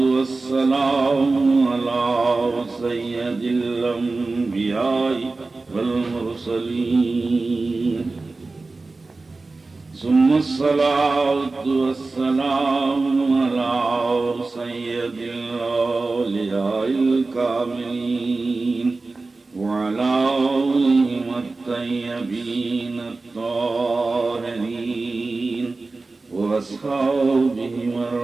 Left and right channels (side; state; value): left; quieter; 3.6 dB